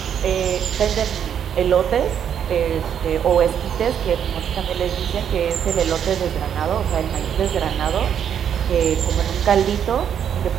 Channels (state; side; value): quieter; left; 8.7 dB